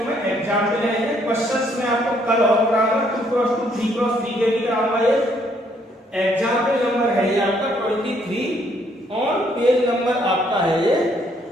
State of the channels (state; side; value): normal; both; correlation 0.68